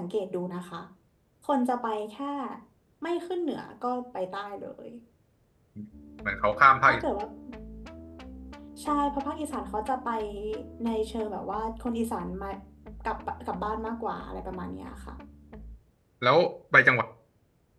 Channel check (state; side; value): identical; both; correlation 1.00